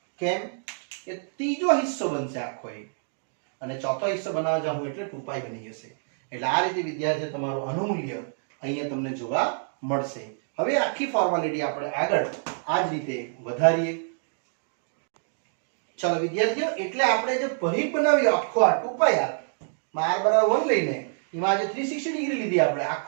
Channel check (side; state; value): left; silent; digital silence